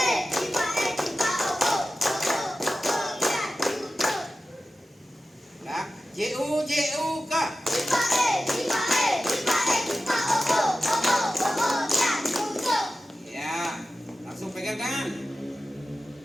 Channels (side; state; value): both; normal; correlation 0.94